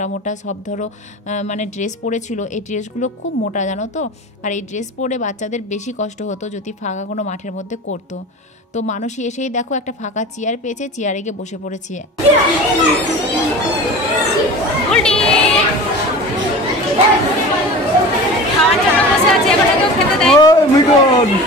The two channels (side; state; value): both; normal; correlation 0.35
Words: মোটা সব ধরো মানে ড্রেস পরেছিল, এই ড্রেসগুলো খুব মোটা জানো তো। আর এই ড্রেস পরে বাচ্চাদের বেশি কষ্ট হতো যদি ফাঁকা কোনো মাঠের মধ্যে করতো। তো মানসী এসেই দেখো একটা ফাঁকা চেয়ার পেয়েছে, চেয়ারে গিয়ে বসে পড়েছি।